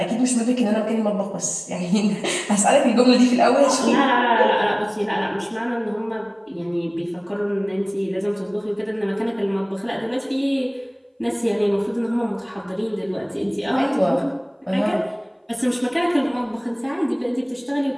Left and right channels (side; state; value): both; identical; correlation 1.00